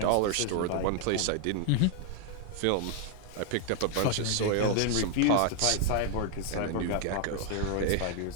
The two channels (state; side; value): different; both; correlation 0.00